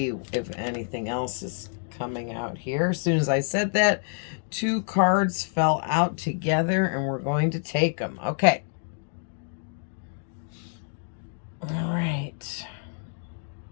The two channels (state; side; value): silent; right; digital silence